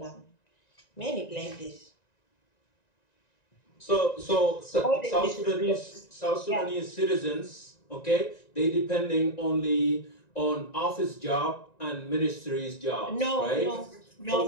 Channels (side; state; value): right; late; 1.9 ms